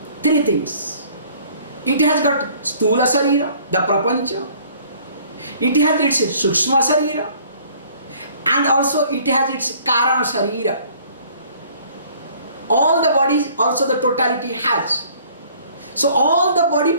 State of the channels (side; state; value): both; inverted; correlation -0.56